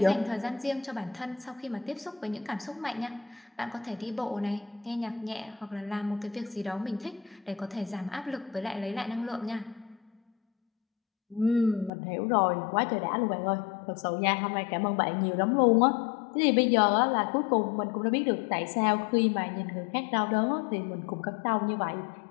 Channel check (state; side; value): drops out; right; at 11.9 s